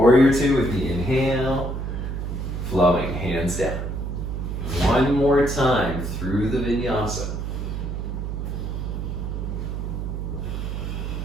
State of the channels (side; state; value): right; noise; hum, 4 dB below the sound